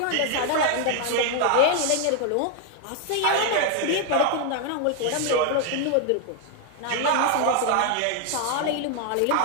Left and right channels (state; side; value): different; both; correlation 0.01